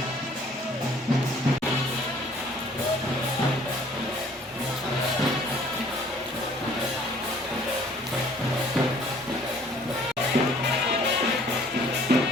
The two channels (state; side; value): normal; both; correlation 0.56